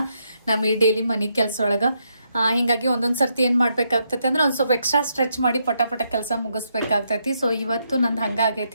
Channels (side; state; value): both; inverted; correlation -0.78